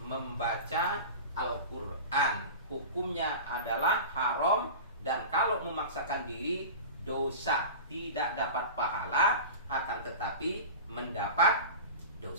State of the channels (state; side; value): inverted; both; correlation -0.33